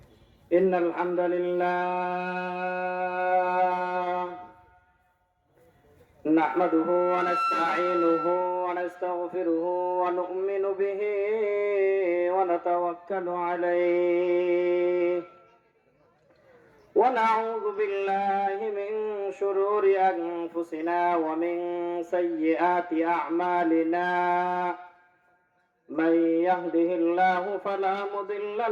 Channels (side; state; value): both; identical; correlation 1.00